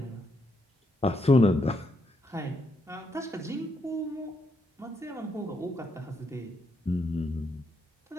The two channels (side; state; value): both; normal; correlation 0.78